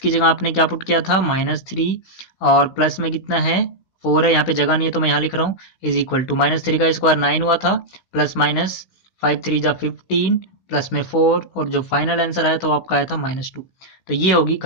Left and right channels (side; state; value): right; late; 16 ms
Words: जगह आपने क्या पुट किया था -3, और प्लस में कितना है 4 है, यहाँ पे जगह नहीं है तो मैं यहाँ लिख रहा हूँ, इज इक्वल टू -3 का स्क्वायर 9 हुआ था, प्लस माइनस 5 3 जा 15, प्लस में 4, और जो फाइनल आंसर आया था वो आपका आया था -2। तो ये होगी